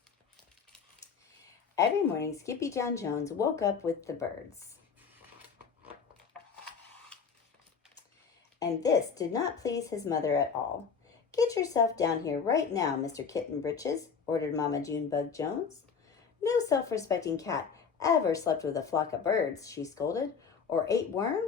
Every morning, Skippyjon Jones woke up with the birds. And this did not please his mother at all. "Get yourself down here right now, Mr. Kitten Britches," ordered Mama Junebug Jones. "No self-respecting cat ever slept with a flock of birds," she scolded, "or ate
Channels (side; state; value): right; quieter; 6.1 dB